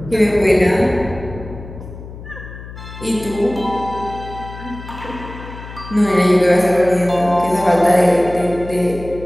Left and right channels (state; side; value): noise; left; hum, 14 dB below the sound